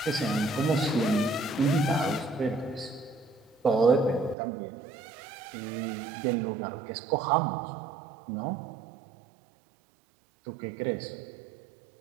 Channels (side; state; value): left; drops out; at 4.4 s